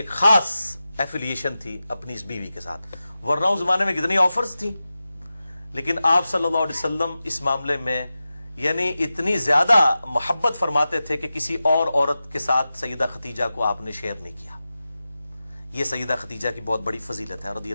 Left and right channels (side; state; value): both; inverted; correlation -0.93